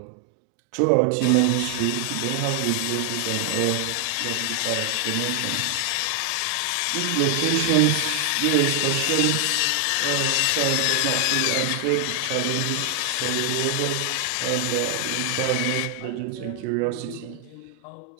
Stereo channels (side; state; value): both; different; correlation 0.00